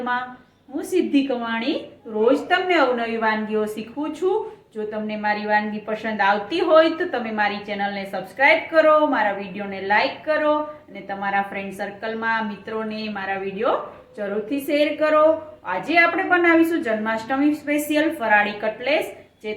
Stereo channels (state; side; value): identical; both; correlation 1.00